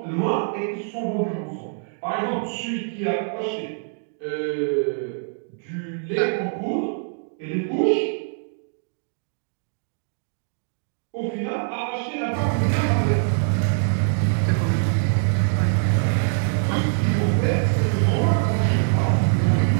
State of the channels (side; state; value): left; silent; digital silence